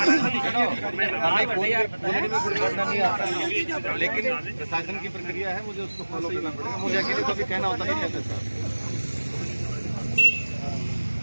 लेकिन प्रशासन की प्रक्रिया है, मुझे उसको फॉलो करना पड़ेगा। मुझे अकेले कभी कहना होता नहीं कहते सर।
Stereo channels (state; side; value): inverted; both; correlation -1.00